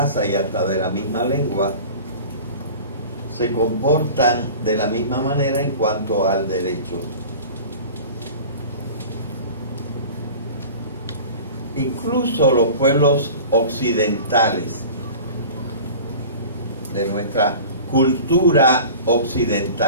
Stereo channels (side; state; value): both; inverted; correlation -0.39